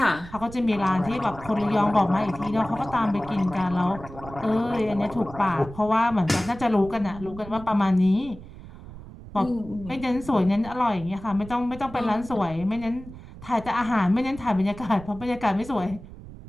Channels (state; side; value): noise; right; rumble, 15 dB below the sound